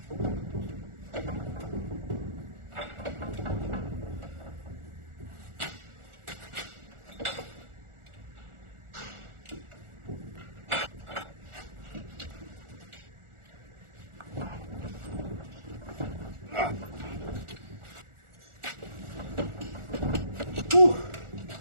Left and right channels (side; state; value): left; late; 1.4 ms